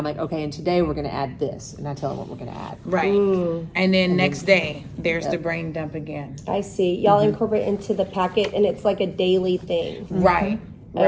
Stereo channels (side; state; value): both; identical; correlation 1.00